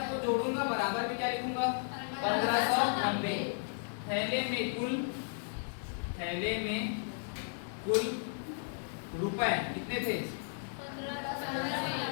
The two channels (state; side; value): silent; right; 55 dB below the other